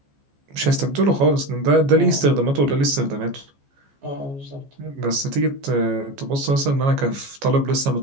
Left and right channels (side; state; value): left; late; 14 ms